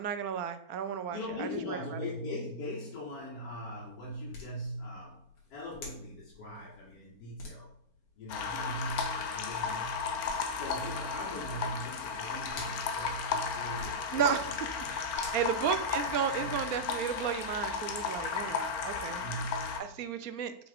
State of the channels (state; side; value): late; right; 4.4 ms